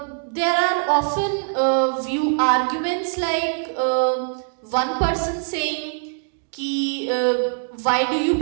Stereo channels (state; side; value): silent; left; digital silence